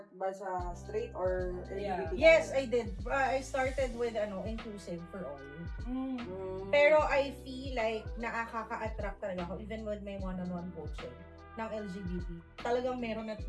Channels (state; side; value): identical; both; correlation 1.00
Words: ba sa straight or Yeah. LGBT? Yes, I did. I started with inclusive for all. Mm. Pero I feel like nakaka-attract talaga ako even with my one-on-one coaching ng LGBT. Talagang meron at